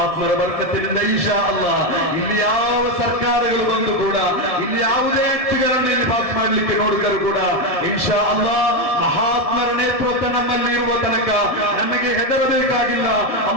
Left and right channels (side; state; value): left; late; 1.7 ms